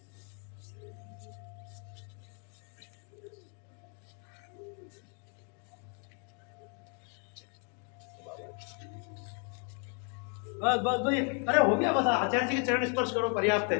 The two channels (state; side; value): quieter; right; 39.3 dB